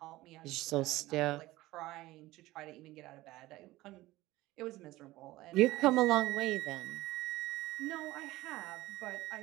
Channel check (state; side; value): quieter; left; 17.8 dB